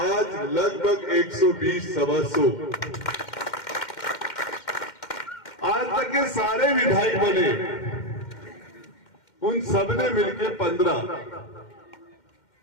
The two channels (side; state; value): right; late; 2.1 ms